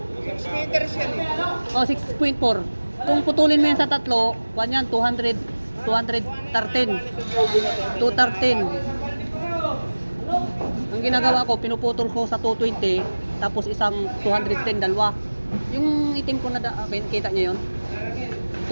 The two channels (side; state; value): both; inverted; correlation -1.00